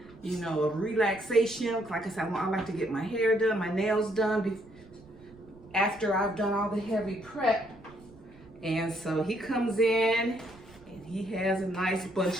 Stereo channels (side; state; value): right; noise; rumble, 24 dB below the sound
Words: of relaxation. Like I said, I like to get my hair done, my nails done after I've done all the heavy prep. And so he comes in and he has a nice